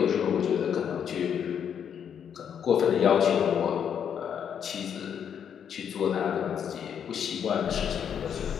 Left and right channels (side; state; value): right; quieter; 8.2 dB